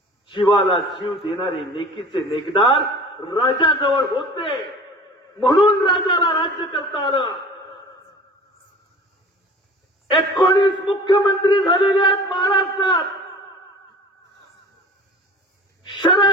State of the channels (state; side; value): normal; both; correlation 0.41